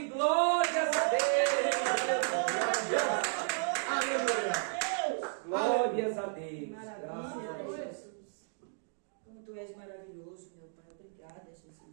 glórias a Deus. Aleluia. Glórias a Deus. Maravilha, Jesus. Como tu és maravilhoso, meu Pai. Obrigada,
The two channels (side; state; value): left; silent; digital silence